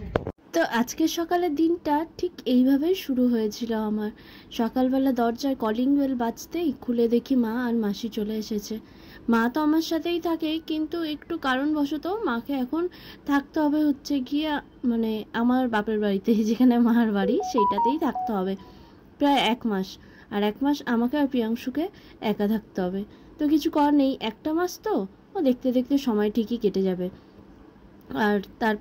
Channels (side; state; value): both; identical; correlation 1.00